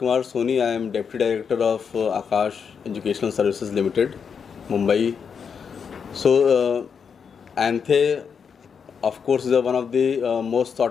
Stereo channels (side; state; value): right; quieter; 6.5 dB